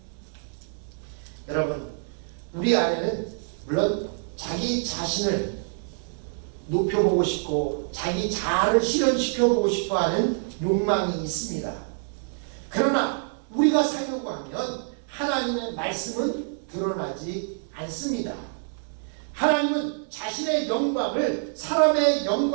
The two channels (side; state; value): left; silent; 61 dB below the other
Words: 여러분 우리 안에는 물론 자기 자신을 높여보고 싶고 자기 자아를 실현시켜보고 싶어하는 욕망이 있습니다. 그러나 우리가 살려고 하면 하나님의 말씀은 드러나지 않습니다. 하나님은 자신의 영광을 사람의